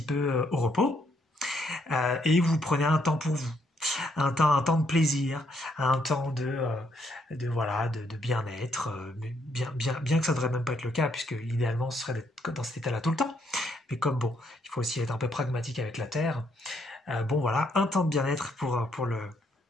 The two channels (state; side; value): normal; both; correlation 0.73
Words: peu au repos, et vous prenez un temps pour vous. Un temps de plaisir, un temps de bien-être, bien que ça devrait même pas être le cas, puisque idéalement ce serait d'être dans cet état-là tout le temps. Mais comme bon, il faut aussi être un peu pragmatique avec la Terre. Bon voilà, un temps de bien-être pour